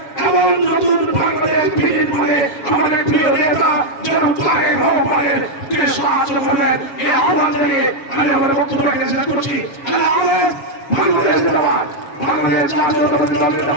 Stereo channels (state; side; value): late; right; 7.2 ms